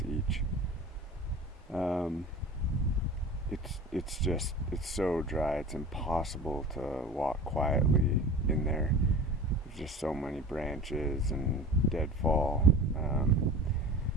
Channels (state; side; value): normal; both; correlation 0.37